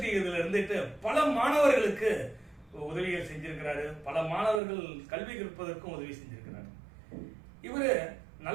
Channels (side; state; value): left; drops out; at 4.6 s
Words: இதுல இருந்துட்டு பல மாணவர்களுக்கு உதவிகள் செஞ்சிருக்கிறாரு. பல மாணவர்கள் கல்வி கற்பதற்கும் உதவி செஞ்சிருக்கிறார். இவரு